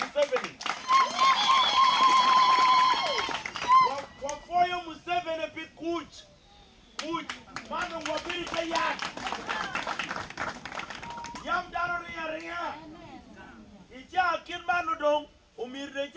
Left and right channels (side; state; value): both; identical; correlation 1.00